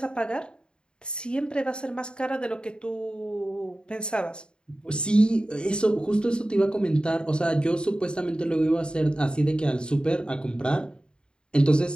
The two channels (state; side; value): late; right; 0.051 ms